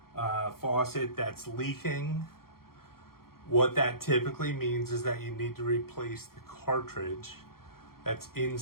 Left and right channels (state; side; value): late; right; 0.93 ms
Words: faucet that's leaking. What that typically means is that you need to replace the cartridge that's